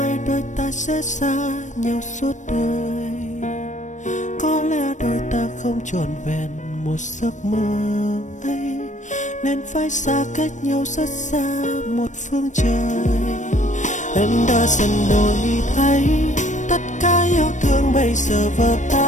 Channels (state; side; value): late; right; 0.35 ms